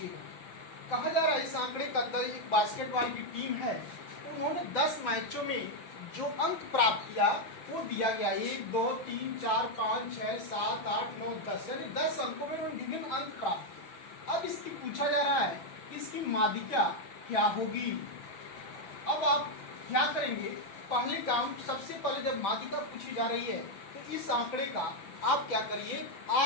गए। कहा जा रहा है इस आंकड़े का एक बास्केटबॉल की टीम है, उन्होंने 10 मैचों में जो अंक प्राप्त किया वो दिया गया 1, 2, 3, 4, 5, 6, 7, 8, 9, 10, यानी 10 अंकों में उन्होंने विभिन्न अंक प्राप्त किए। अब इसकी पूछा जा रहा है इसकी माध्यिका क्या होगी। अब आप क्या करेंगे, पहले काम सबसे पहले जब माध्यिका पूछी जा रही है तो इस आंकड़े का आप क्या करिए,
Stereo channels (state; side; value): late; right; 6.0 ms